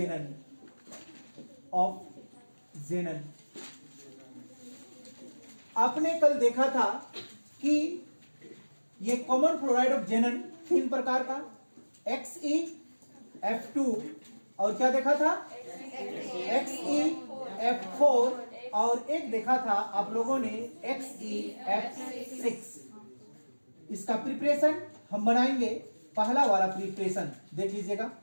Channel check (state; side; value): inverted; both; correlation -1.00